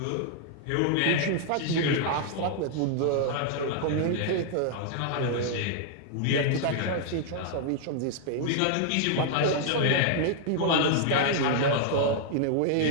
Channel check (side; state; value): both; different; correlation 0.00